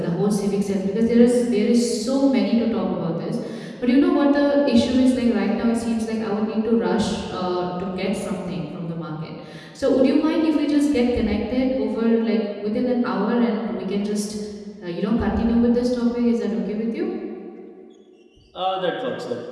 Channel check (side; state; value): both; identical; correlation 1.00